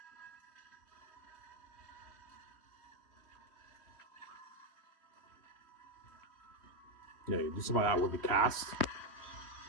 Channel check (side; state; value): right; late; 3.1 ms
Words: Yeah, you do some of that with the cast.